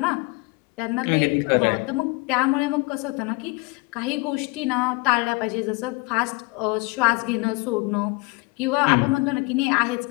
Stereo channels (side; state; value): right; quieter; 26.8 dB